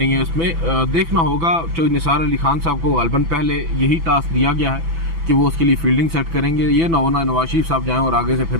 ہے اس میں. دیکھنا ہوگا چوہدری نثار علی خان صاحب کو غالباً پہلے یہی ٹاسک دیا گیا ہے کہ وہ اس کے لیے فیلڈنگ سیٹ کریں گے. یہ نہ ہونا نواز شریف صاحب جائیں اور آگے سے پھر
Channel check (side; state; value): left; late; 6.0 ms